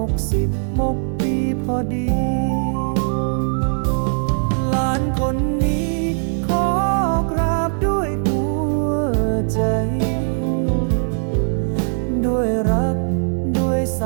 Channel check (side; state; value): left; silent; 66 dB below the other